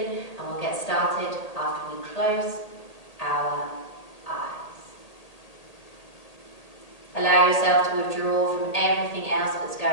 and we'll get started after we close our eyes. Allow yourself to withdraw from everything else that's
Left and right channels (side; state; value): right; late; 1.8 ms